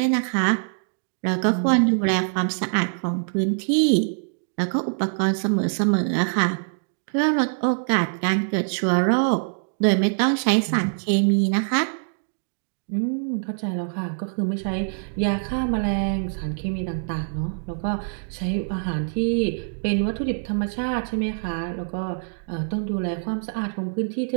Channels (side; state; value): left; silent; digital silence